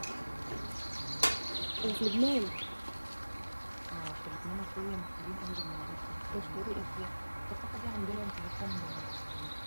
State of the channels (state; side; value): inverted; both; correlation -1.00